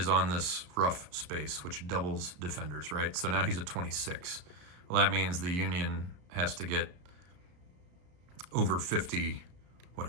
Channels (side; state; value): left; late; 33 ms